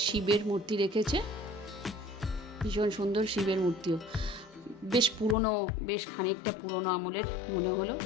শিবের মূর্তি রেখেছে, ভীষণ সুন্দর শিবের মূর্তিও, বেশ পুরনো, বেশ খানিকটা পুরনো আমলের মনে হলো।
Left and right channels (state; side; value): drops out; right; at 5.4 s